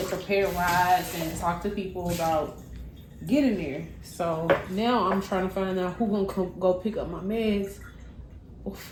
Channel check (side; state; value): both; identical; correlation 1.00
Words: prepare rides and talk to people about getting there. So now I'm trying to find out who gonna go pick up my meds